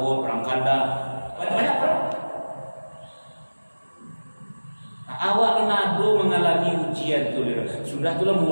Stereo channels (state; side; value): inverted; both; correlation -1.00